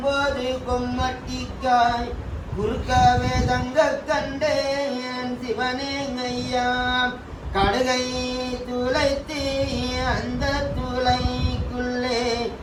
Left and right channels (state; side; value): identical; both; correlation 1.00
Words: கொம்மட்டிக்காய் குறுக்கவே தங்க கண்டேன் சிவனே ஐயா. கடுகை துளைத்து அந்த துளைக்குள்ளே